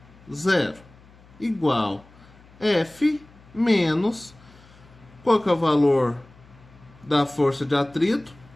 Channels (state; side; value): noise; left; hum, 25 dB below the sound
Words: 0. Igual F menos, qual que é o valor da força de atrito?